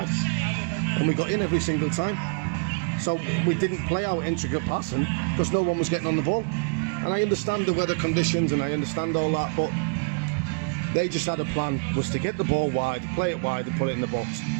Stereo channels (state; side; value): quieter; left; 38.7 dB